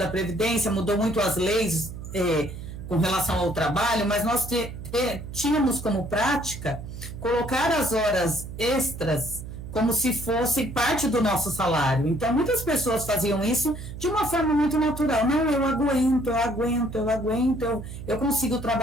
Previdência, mudou muito as leis com relação ao trabalho, mas nós tínhamos como prática colocar as horas extras como se fosse parte do nosso salário. Então, muitas pessoas faziam isso de uma forma muito natural. Não, eu aguento, eu consigo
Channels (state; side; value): noise; right; hum, 10 dB below the sound